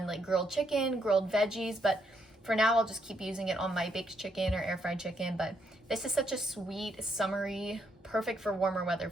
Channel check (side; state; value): both; normal; correlation 0.76